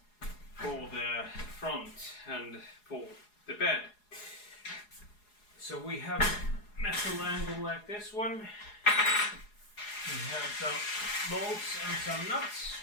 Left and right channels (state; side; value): late; right; 4.8 ms